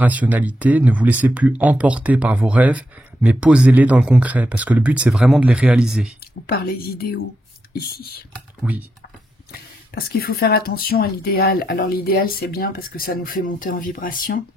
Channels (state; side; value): normal; both; correlation 0.84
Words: ne vous laissez plus emporter par vos rêves, mais posez-les dans le concret, parce que le but, c'est vraiment de les réaliser. Ou par les idéaux, ici. Oui. Parce qu'il faut faire attention à l'idéal. Alors l'idéal, c'est bien parce que ça nous fait monter en vibration.